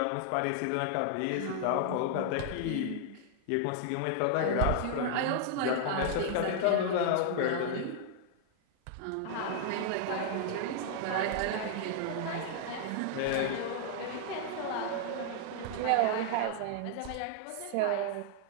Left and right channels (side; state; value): both; different; correlation -0.01